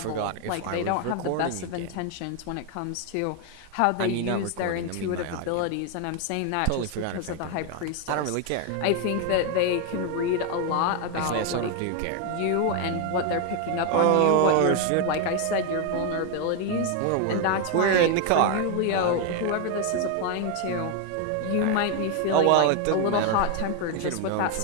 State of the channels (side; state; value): both; different; correlation 0.01